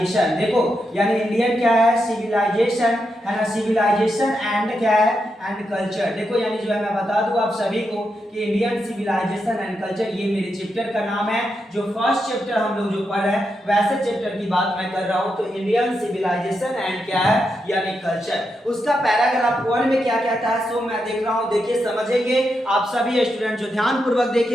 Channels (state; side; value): normal; both; correlation 0.84